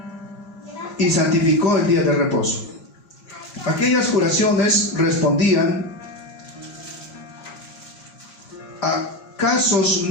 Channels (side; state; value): right; late; 5.0 ms